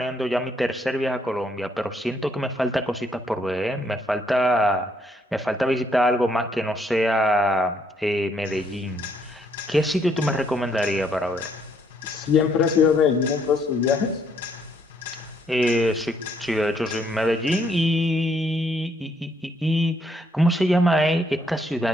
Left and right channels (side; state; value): both; normal; correlation 0.70